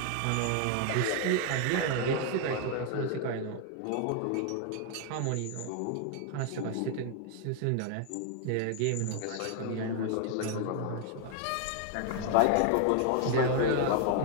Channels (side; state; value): both; different; correlation 0.00